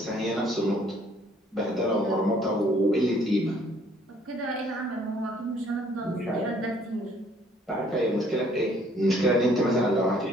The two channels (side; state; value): both; normal; correlation 0.61